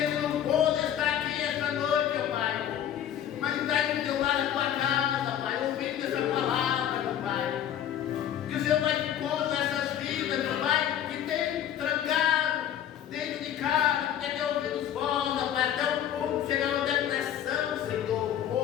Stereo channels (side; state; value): right; quieter; 10.4 dB